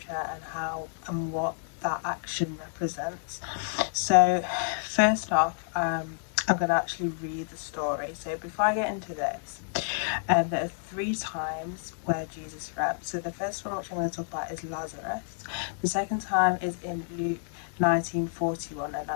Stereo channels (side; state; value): right; silent; digital silence